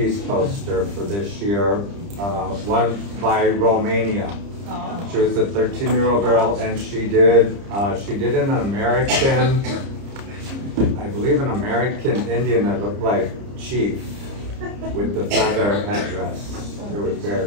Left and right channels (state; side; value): late; left; 30 ms